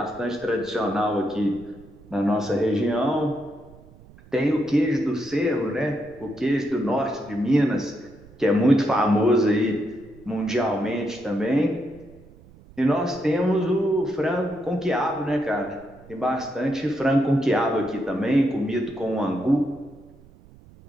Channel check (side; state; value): right; noise; rumble, 23 dB below the sound